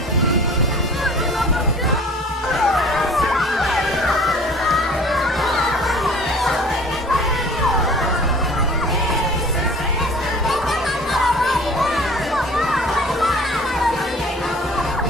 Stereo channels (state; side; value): normal; both; correlation 0.47